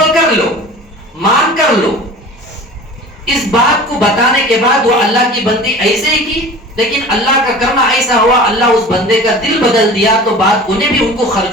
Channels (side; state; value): both; normal; correlation 0.39